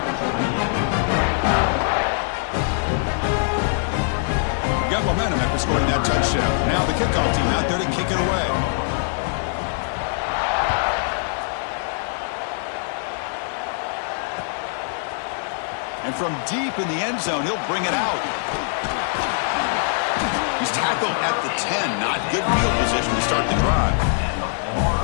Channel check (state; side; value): silent; right; 64 dB below the other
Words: Got momentum after scoring that touchdown. Now the kickoff team out there to kick it away. And from deep in the end zone, he'll bring it out. He's tackled at the 10. Not good field position to start the drive.